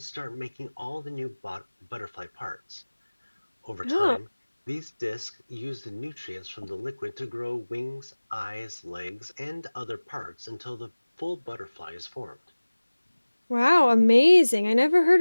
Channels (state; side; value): inverted; both; correlation -1.00